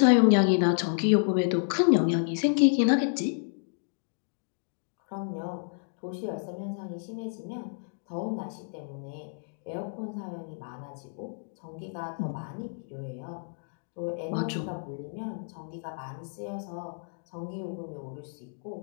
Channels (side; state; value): right; silent; digital silence